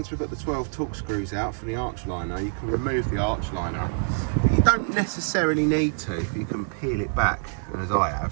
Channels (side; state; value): left; silent; 57 dB below the other